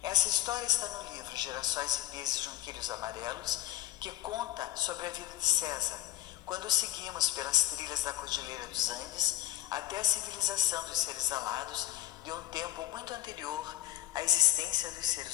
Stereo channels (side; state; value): right; quieter; 15.2 dB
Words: Essa história está no livro Girassóis e Pesos Junquilhos Amarelos, que conta sobre a vida de César, quando seguimos pelas trilhas da Cordilheira dos Andes até a civilização dos seres alados de um tempo muito anterior à existência dos